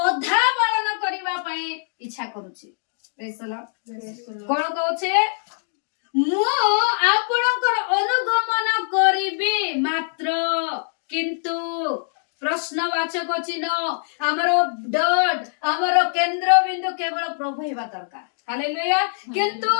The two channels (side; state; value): right; silent; digital silence